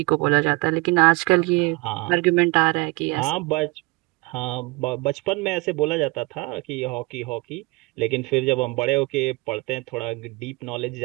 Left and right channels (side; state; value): left; quieter; 25.4 dB